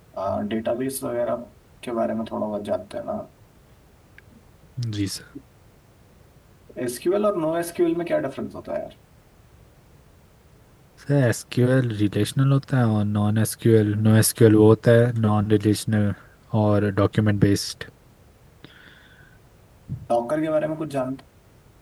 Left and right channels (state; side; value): identical; both; correlation 1.00